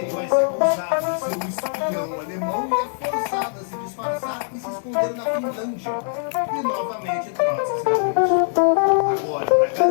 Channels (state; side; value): silent; right; digital silence